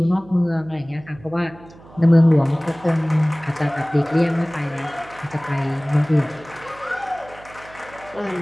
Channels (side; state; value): right; noise; hum, 22 dB below the sound